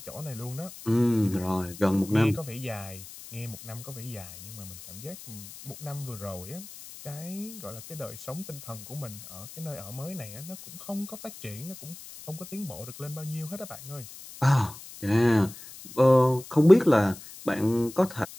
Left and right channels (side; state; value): left; noise; hiss, 15 dB below the sound